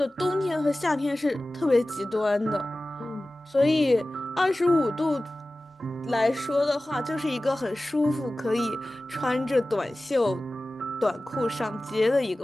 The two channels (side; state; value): both; normal; correlation 0.96